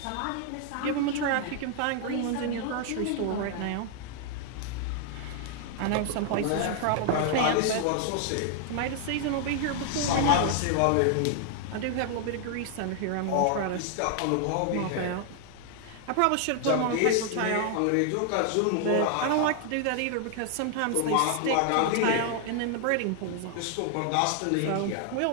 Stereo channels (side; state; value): both; different; correlation 0.00